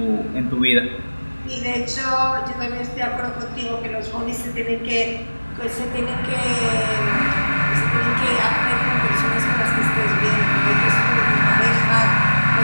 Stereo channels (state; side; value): inverted; both; correlation -1.00